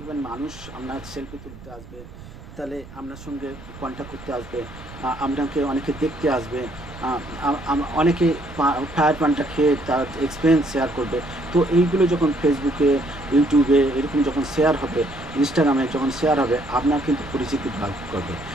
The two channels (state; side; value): noise; right; rumble, 17 dB below the sound